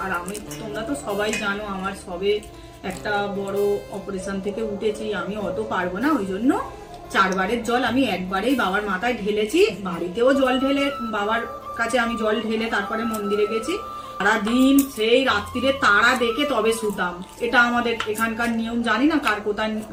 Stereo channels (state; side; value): identical; both; correlation 1.00